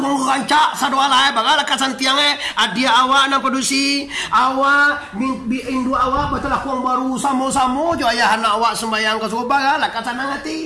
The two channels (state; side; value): identical; both; correlation 1.00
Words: rancak sadua lae bagala kasantiang adia awak nang produksi awak indu awak betul lakung baru samo-samo jo ayah anak awak sembayang ke subuh bagala kasanang